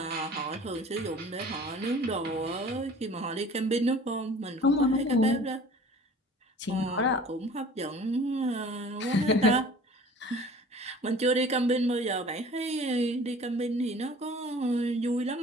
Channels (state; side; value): normal; both; correlation 0.46